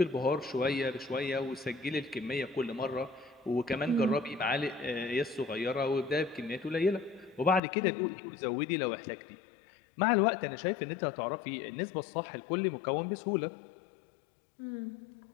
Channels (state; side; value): drops out; right; at 7.6 s